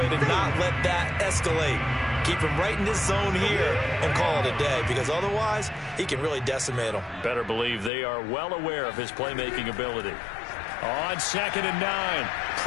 to not let that escalate. Keep him right in this zone here and call it a day, because otherwise, he can really decimate them. Better believe they are well aware of his playmaking ability. On 2nd and 9,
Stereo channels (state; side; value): drops out; right; at 7.9 s